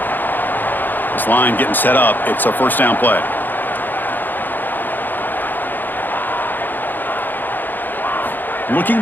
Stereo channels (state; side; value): late; right; 0.089 ms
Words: This line getting set up. It's a 1st down play. Looking